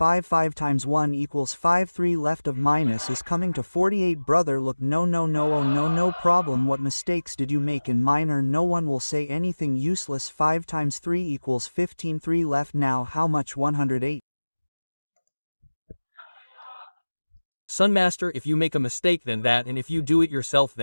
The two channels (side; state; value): both; inverted; correlation -1.00